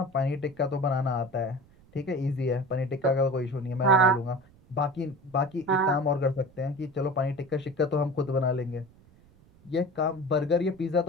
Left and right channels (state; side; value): noise; right; rumble, 27 dB below the sound